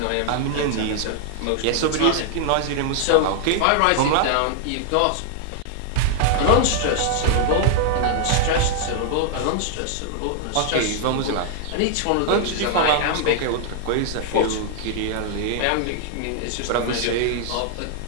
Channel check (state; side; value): different; both; correlation 0.00